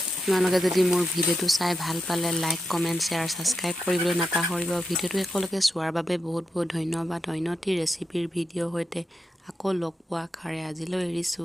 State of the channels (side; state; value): both; normal; correlation 0.86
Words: আপোনালোকে যদি মোৰ ভিডিঅ'টো চাই ভাল পালে লাইক, কমেণ্ট, শ্বেয়াৰ, ছাবস্ক্ৰাইব কৰিবলৈ নাপাহৰিব। ভিডিঅ'টো একেলগে চোৱাৰ বাবে বহুত বহুত ধন্যবাদ। উন্নতি ৰেচিপিৰ ভিডিঅ'ৰ সৈতে আকৌ লগ পোৱা আশাৰে আজিলৈ